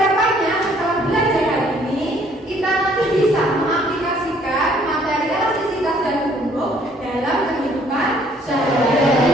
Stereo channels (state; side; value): normal; both; correlation 0.61